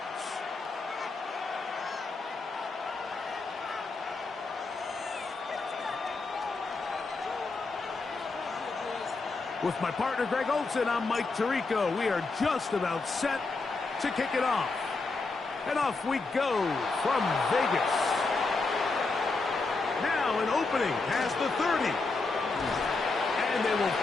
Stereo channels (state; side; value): quieter; right; 3.8 dB